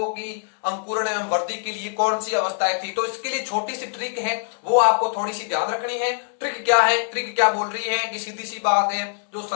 कि अंकुरण एवं वृद्धि के लिए कौन सी अवस्थाएं थी। तो इसके लिए छोटी सी ट्रिक है, वो आपको थोड़ी सी ध्यान रखनी है। ट्रिक क्या है? ट्रिक क्या बोल रही है कि सीधी सी बात है, जो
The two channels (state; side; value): silent; right; digital silence